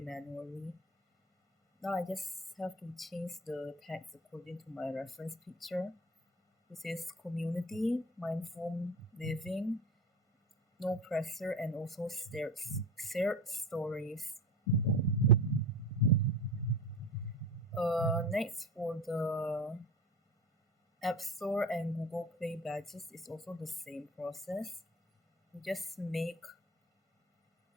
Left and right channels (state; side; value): normal; both; correlation 0.33